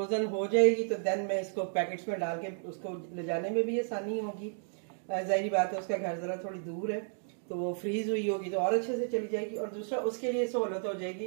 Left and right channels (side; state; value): left; silent; digital silence